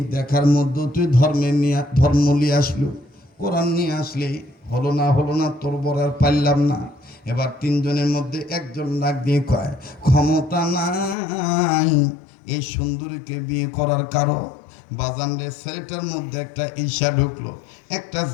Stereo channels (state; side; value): drops out; right; at 11.2 s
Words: দেখার মধ্যে তুই ধর্ম নিয়ে আসলো, কোরআন নিয়ে আসলি, হলো না তোর বড় আর পারলাম না। এবার তিনজনের মধ্যে একজন ডাক দিয়ে কয়, ক্ষমতা নাই এই সুন্দরীকে বিয়ে করার কারণ। বাজান রে, ছেলেটার মধ্যে একটা ঈর্ষা ঢুকলো, একটা